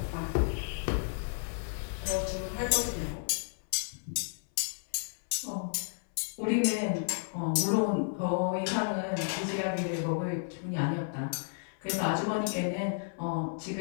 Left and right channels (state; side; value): silent; right; 56 dB below the other